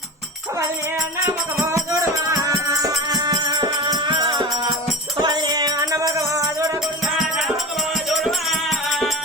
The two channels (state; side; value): normal; both; correlation 0.30